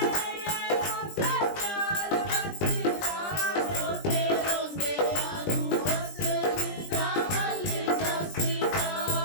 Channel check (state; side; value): late; right; 20 ms